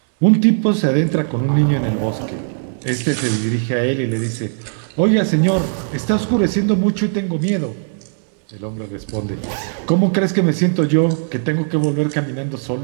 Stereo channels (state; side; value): silent; left; digital silence